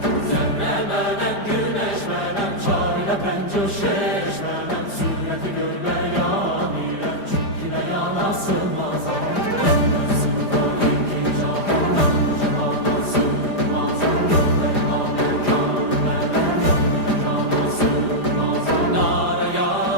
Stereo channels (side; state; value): right; late; 5.0 ms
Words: Zerre menem, güneş menem, çarine penco şeş menem. Sureti gör beyan ile, çünkü beyana sığmazam.